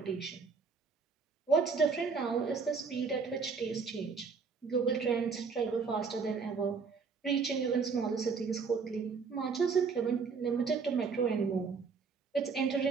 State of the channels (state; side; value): quieter; left; 5.2 dB